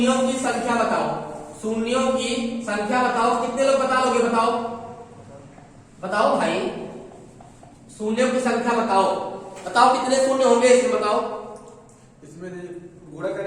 की संख्या बताओ, शून्यों की संख्या बताओ। कितने लोग बता लोगे, बताओ बताओ भाई, शून्यों की संख्या बताओ। बताओ कितने शून्य होंगे, इसमें बताओ। इसमें गुणा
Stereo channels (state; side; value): identical; both; correlation 1.00